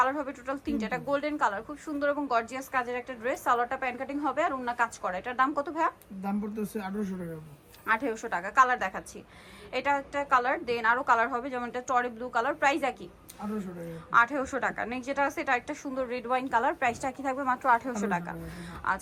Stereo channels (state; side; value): identical; both; correlation 1.00